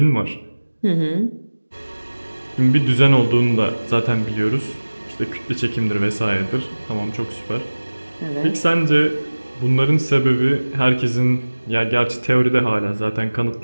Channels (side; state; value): both; inverted; correlation -1.00